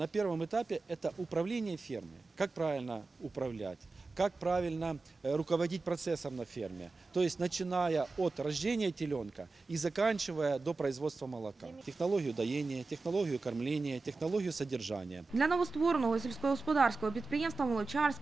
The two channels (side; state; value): left; quieter; 3.8 dB